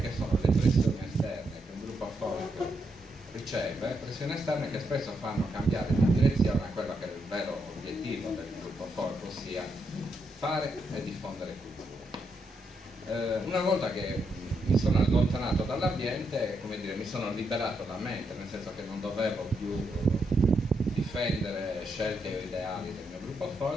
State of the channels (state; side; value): normal; both; correlation 0.80